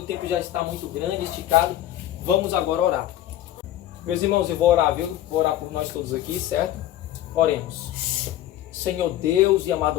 tempo já está muito grande, esticado. Vamos agora orar. Meus irmãos, eu vou orar, viu? Vou orar por nós todos aqui, certo? Oremos. Senhor Deus e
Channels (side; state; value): right; quieter; 13.1 dB